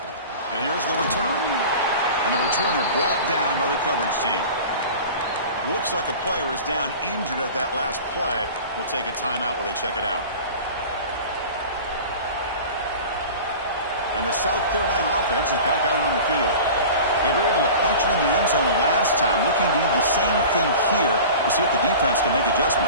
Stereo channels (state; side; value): inverted; both; correlation -0.37